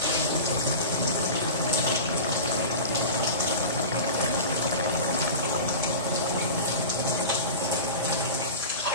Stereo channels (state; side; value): inverted; both; correlation -0.32